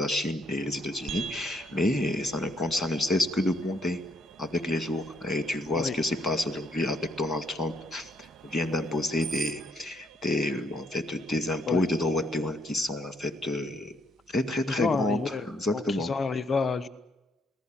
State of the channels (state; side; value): normal; both; correlation 0.71